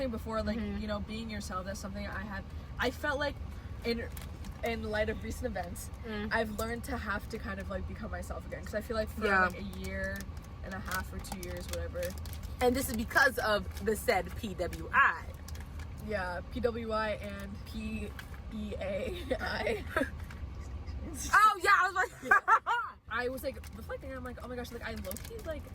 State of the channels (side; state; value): both; identical; correlation 1.00